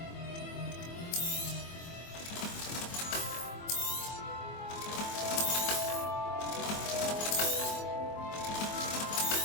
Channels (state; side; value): late; right; 24 ms